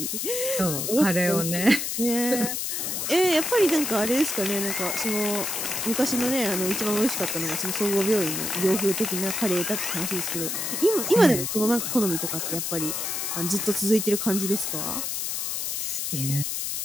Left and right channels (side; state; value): left; noise; hiss, 2 dB below the sound